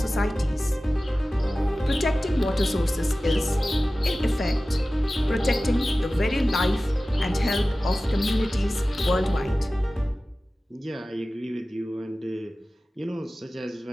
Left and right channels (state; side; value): normal; both; correlation 0.96